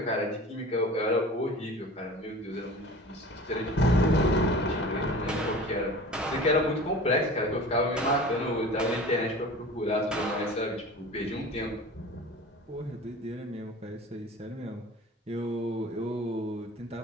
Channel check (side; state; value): both; normal; correlation 0.39